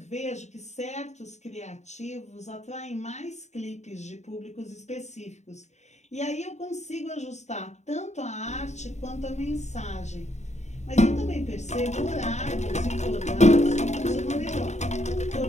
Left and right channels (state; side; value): late; right; 0.33 ms